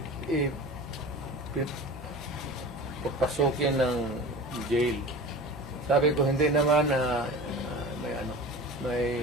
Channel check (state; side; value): normal; both; correlation 0.35